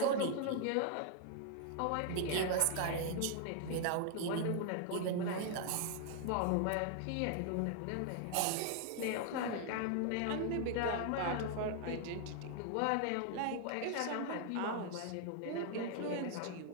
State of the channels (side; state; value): both; different; correlation 0.00